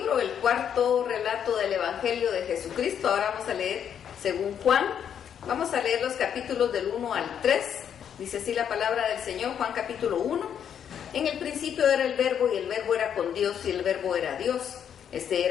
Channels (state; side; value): quieter; right; 8.6 dB